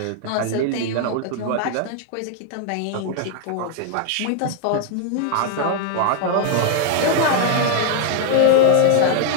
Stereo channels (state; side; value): different; both; correlation 0.00